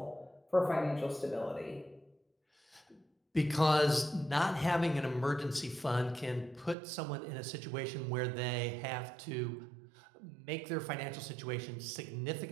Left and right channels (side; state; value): left; drops out; at 6.8 s